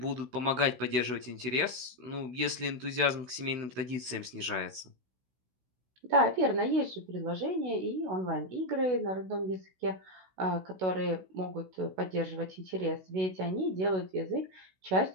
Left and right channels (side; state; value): left; late; 16 ms